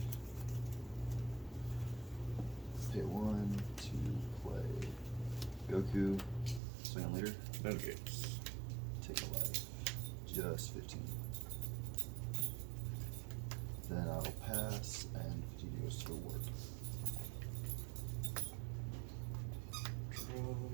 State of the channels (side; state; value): left; drops out; at 6.6 s